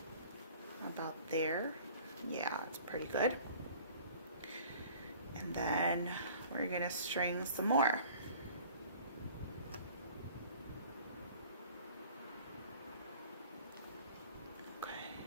About there. Yeah, it's pretty good. And then we're gonna string some more. Okay,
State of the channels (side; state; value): both; inverted; correlation -0.48